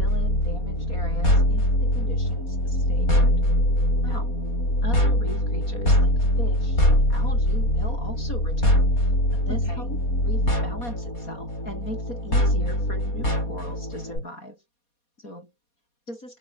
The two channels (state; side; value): late; right; 4.2 ms